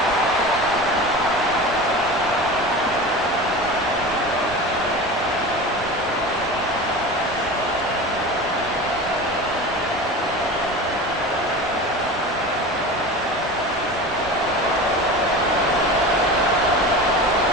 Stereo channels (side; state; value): both; normal; correlation 0.32